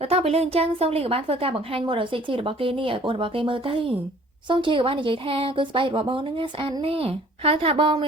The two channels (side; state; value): both; normal; correlation 0.53